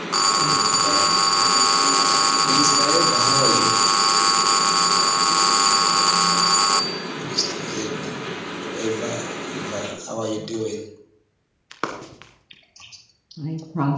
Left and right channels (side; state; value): both; identical; correlation 1.00